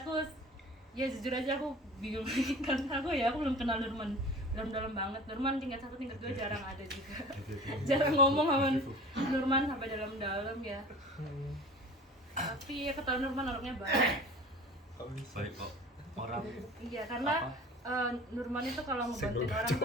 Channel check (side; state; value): both; normal; correlation 0.41